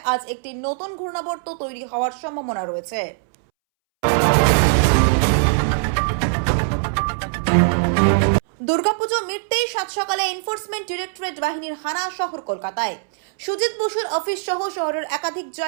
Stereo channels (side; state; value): left; silent; 65 dB below the other